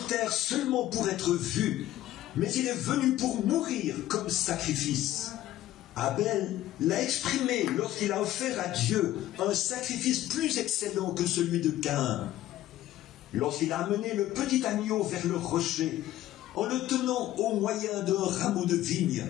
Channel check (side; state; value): right; quieter; 14.2 dB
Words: terre seulement pour être vu, mais il est venu pour mourir comme sacrifice. Abel l'a exprimé lorsqu'il a offert à Dieu un sacrifice plus excellent que celui de Caïn. Lorsqu'il a amené le petit agneau vers le rocher, en le tenant au moyen d'un rameau de vigne